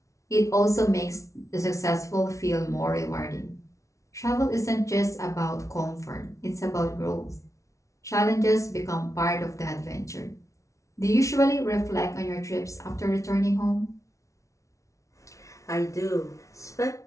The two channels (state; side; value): late; right; 0.15 ms